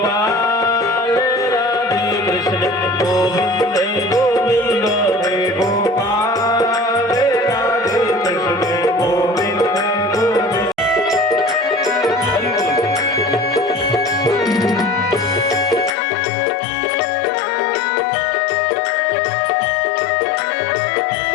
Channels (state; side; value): drops out; right; at 15.9 s